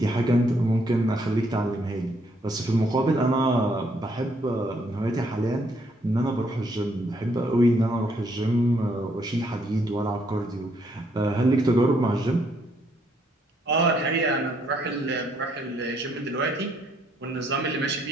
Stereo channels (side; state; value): both; normal; correlation 0.70